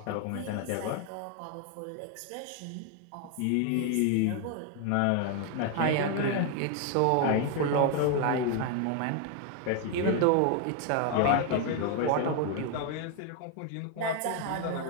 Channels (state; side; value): different; both; correlation 0.01